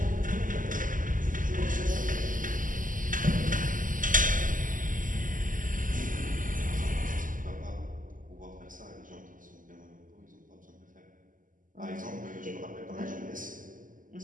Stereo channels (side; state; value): left; late; 0.38 ms